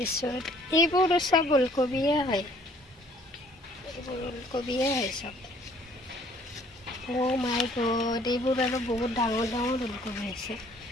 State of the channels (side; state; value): both; normal; correlation 0.58